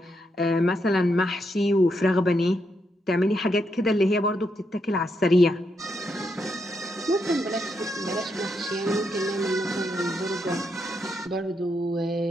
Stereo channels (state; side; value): normal; both; correlation 0.80